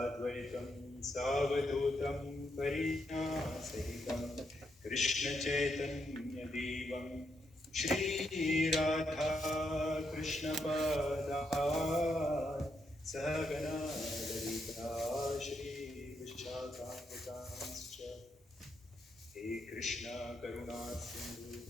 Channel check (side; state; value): both; normal; correlation 0.79